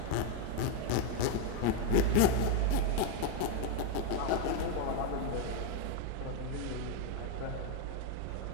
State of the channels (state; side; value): different; both; correlation 0.01